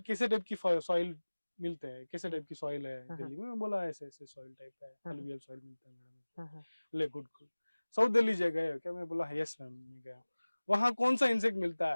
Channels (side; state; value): both; inverted; correlation -1.00